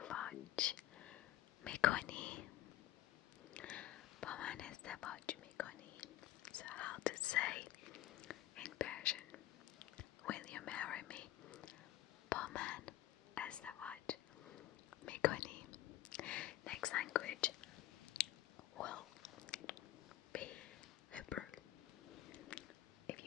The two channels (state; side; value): quieter; right; 14.1 dB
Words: میکنی. با من ازدواج میکنی. So how to say in Persian, will you marry me? با من ازدواج میکنی. Next language will be Hebrew. If